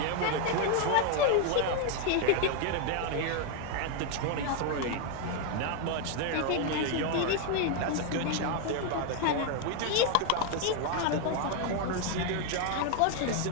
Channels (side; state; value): both; different; correlation 0.01